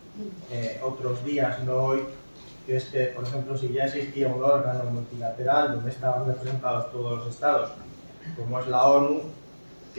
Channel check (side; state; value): both; inverted; correlation -1.00